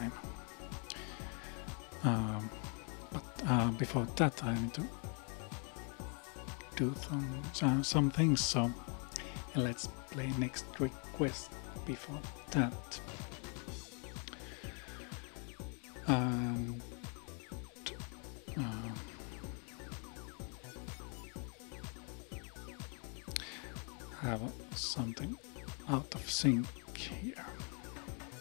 But before that, I need to do some things. So let's play next request before that. And have something out of sync here.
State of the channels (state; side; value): quieter; right; 38.2 dB